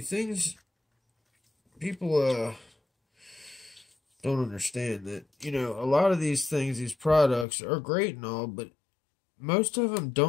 people don't understand that, you know, a lot of these things, these products are great and all, but most of them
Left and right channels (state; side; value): drops out; right; at 7.5 s